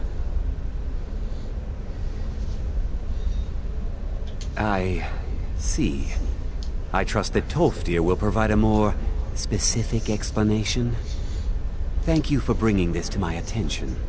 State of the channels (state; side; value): identical; both; correlation 1.00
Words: I see. I trust that Tolfdir will provide a more specific explanation. Thank you for bringing this to my attention.